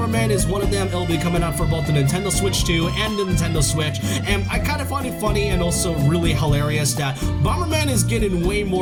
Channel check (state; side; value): identical; both; correlation 1.00